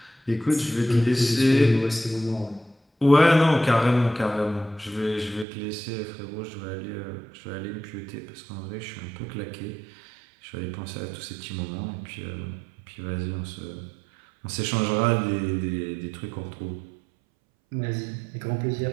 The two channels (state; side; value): drops out; left; at 5.5 s